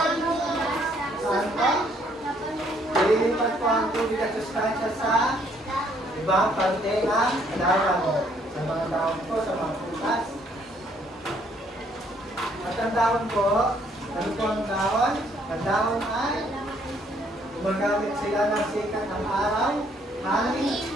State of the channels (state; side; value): normal; both; correlation 0.66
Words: saan po? Lilipat po ang tubig at sustansya sa ibang parte ng halaman. Sa mga dahon po, sa mga prutas. At ang dahon po, ano po ang dahon? Ang dahon ay gumagamit sila ng sikat ng araw, hangin,